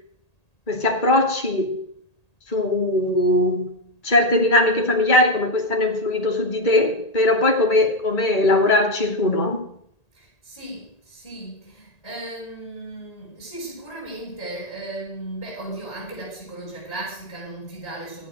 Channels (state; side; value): late; right; 1.8 ms